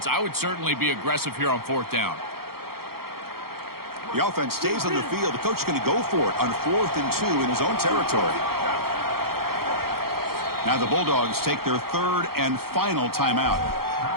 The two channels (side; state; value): left; late; 0.94 ms